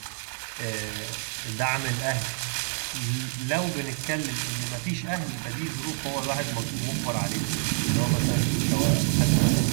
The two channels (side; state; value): left; silent; 60 dB below the other